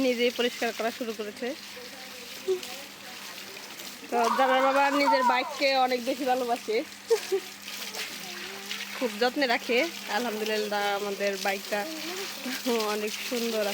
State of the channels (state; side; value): identical; both; correlation 1.00